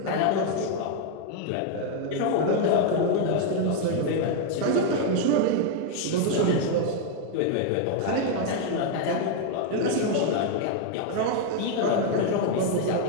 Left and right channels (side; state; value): both; different; correlation 0.00